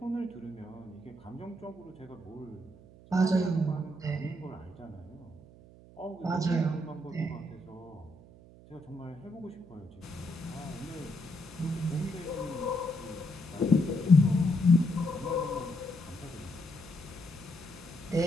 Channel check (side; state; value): right; noise; hum, 21 dB below the sound